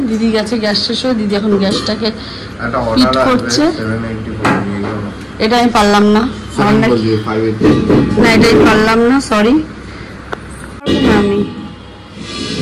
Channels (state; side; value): identical; both; correlation 1.00